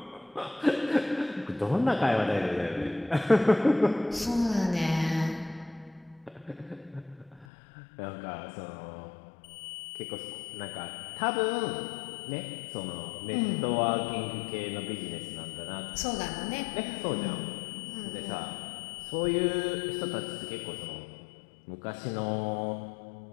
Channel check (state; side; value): drops out; right; at 7.5 s